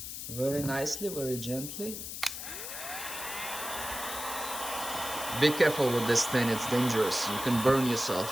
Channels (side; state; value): left; noise; hiss, 7 dB below the sound